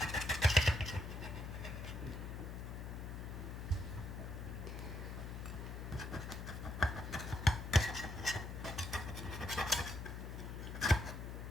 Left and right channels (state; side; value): noise; left; hum, 7 dB below the sound